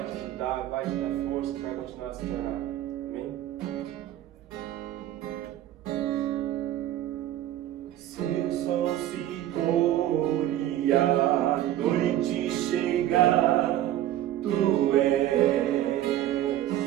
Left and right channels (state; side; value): quieter; left; 13.0 dB